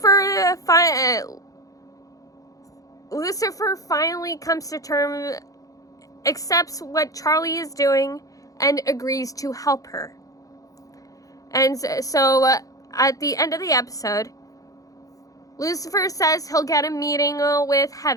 finally comes to terms, accepts what Charlie is doing, and agrees to help her. And so at the end of the episode, Lucifer says he'll get a meeting with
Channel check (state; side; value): late; right; 0.17 ms